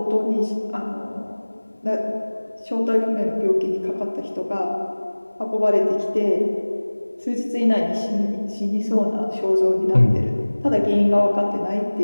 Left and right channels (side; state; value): both; inverted; correlation -1.00